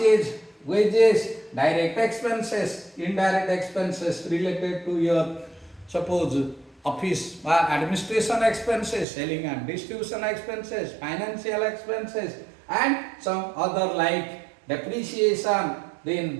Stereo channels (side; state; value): left; drops out; at 9.1 s